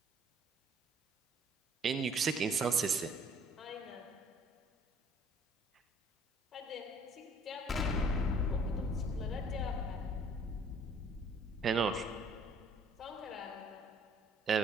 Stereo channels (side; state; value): both; normal; correlation 0.57